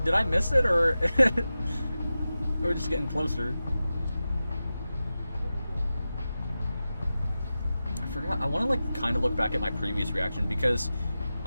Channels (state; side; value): inverted; both; correlation -0.94